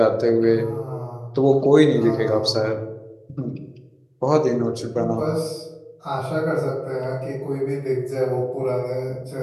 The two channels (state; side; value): identical; both; correlation 1.00